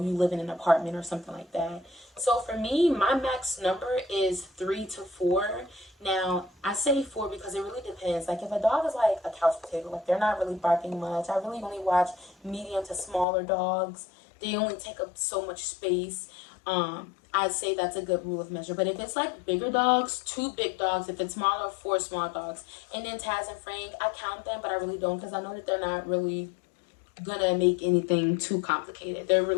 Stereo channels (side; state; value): right; drops out; at 13.2 s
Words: you live in an apartment or something like that. So for me, my max number is 3 to 4. Now, I say 4 because it really depends. Like, if a dog is like a couch potato, like they're not really barking much. I really only watch medium to smaller dogs. They only take up so much space. I'd say that's a good rule of measure. But if it's like bigger dogs, 2 big dogs. If it's smaller, 4 small dogs. And then Taz and Frank, I count them, but I really don't, because I know that they're not really gonna make anything too complicated. They're